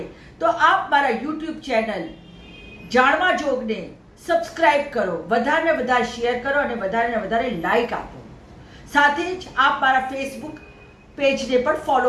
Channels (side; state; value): both; identical; correlation 1.00